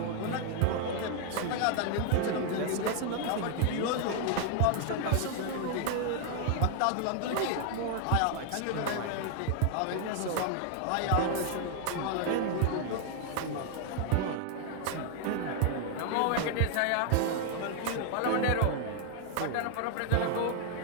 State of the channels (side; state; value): both; different; correlation 0.00